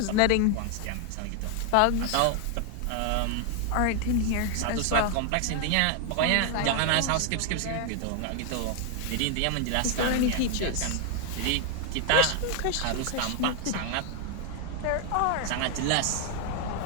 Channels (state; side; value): different; both; correlation 0.01